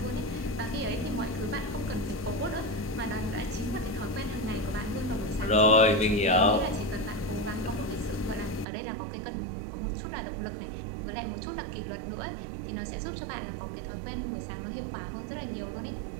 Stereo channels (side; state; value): left; drops out; at 8.7 s